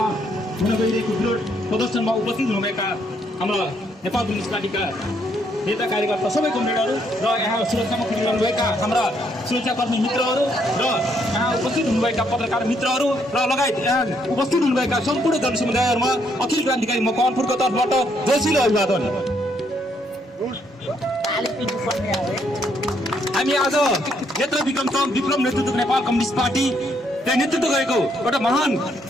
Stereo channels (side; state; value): both; normal; correlation 0.72